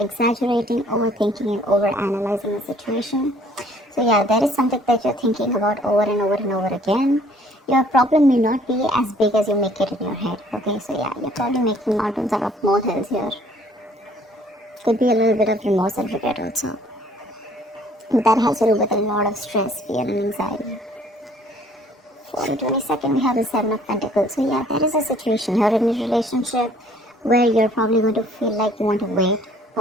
overthinking, and over-analyzing the situation. So yeah, there is something that you're thinking about over and over and over again. Your problem may not be as big as you make it in your head. Okay, so yeah, you're probably making mountains out of molehills here. Could be a little bit of remorse and regret also. But that has to do with a lot of stress, fear, and anxiety. For the 22nd, we have the 7 of Pentacles. So yeah, there is a situation here in a relationship where you're probably going to feel like you want to wait,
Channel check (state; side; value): normal; both; correlation 0.58